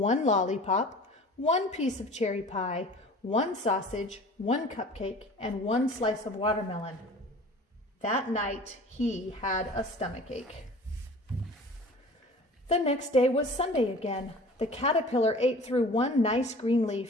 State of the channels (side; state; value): both; normal; correlation 0.43